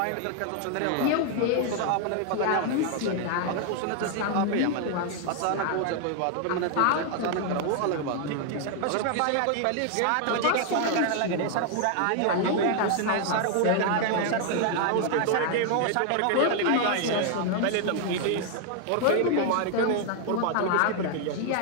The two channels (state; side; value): different; both; correlation 0.00